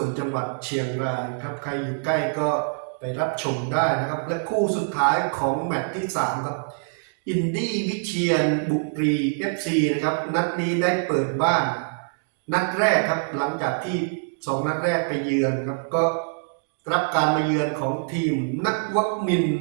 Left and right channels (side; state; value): left; silent; digital silence